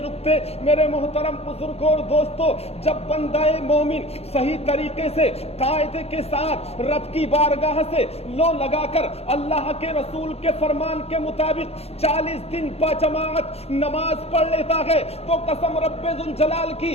رکتے۔ میرے محترم بزرگ اور دوستو، جب بندہ مومن صحیح طریقے سے قاعدے کے ساتھ رب کی بارگاہ سے لو لگا کر اللہ کے رسول کے فرمان کے مطابق 40 دن با جماعت نماز پڑھ لیتا ہے، تو قسم رب ذوالجلال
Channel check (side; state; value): right; late; 0.29 ms